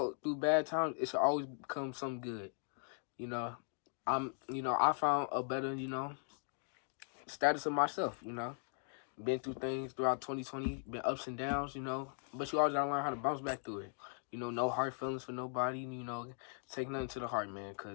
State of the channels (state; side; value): silent; right; 52 dB below the other